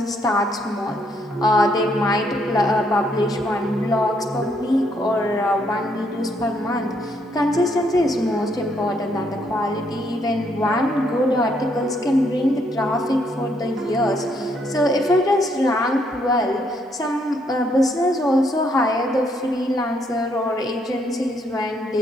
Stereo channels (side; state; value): both; normal; correlation 0.72